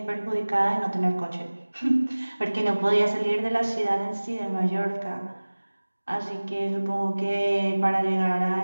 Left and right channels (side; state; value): both; inverted; correlation -1.00